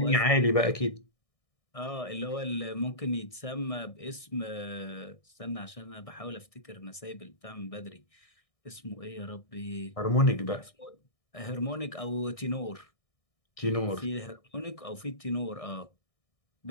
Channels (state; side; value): late; right; 1.6 ms